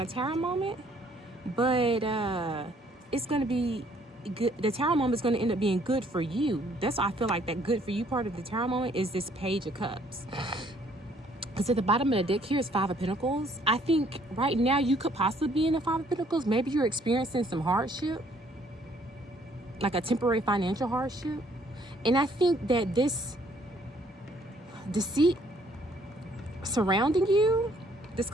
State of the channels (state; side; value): normal; both; correlation 0.63